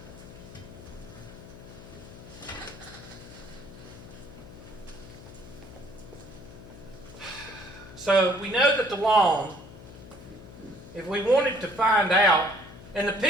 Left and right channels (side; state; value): left; noise; hum, 16 dB below the sound